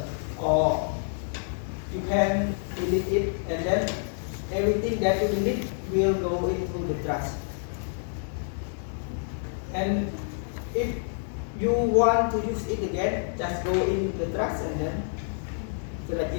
or you can delete it, and then everything that you delete will go into the trash. And if you want to use it again, just go in the trash and then select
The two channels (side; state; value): right; silent; digital silence